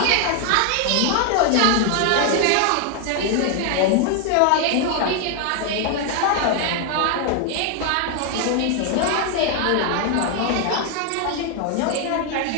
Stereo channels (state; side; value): different; both; correlation 0.00